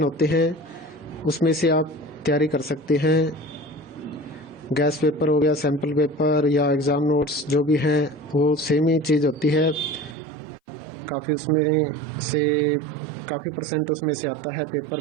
होते हैं, उसमें से आप तैयारी कर सकते हैं। गैस पेपर हो गया, सैम्पल पेपर या एग्ज़ाम नोट्स जो भी हैं वो सेम ही चीज़ होती है। काफ़ी उसमें से काफ़ी परसेंट उसमें से आता है पेपर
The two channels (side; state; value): left; drops out; at 10.2 s